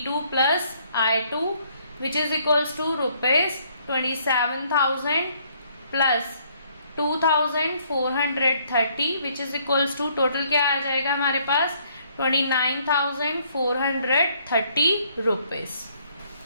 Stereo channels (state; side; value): inverted; both; correlation -0.66